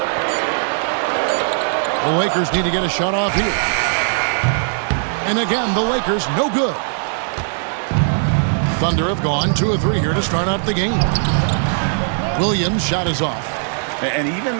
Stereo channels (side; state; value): left; silent; 60 dB below the other